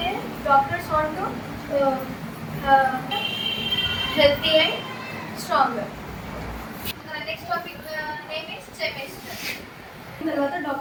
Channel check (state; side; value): identical; both; correlation 1.00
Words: want to healthy and stronger. Next topic name is semester. తర్వాత